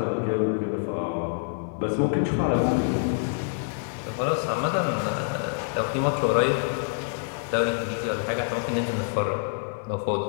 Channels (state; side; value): silent; right; digital silence